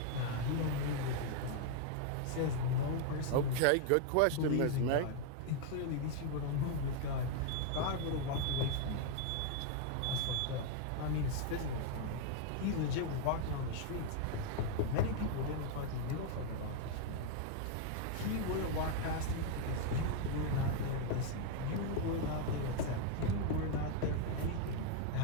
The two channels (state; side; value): different; both; correlation 0.00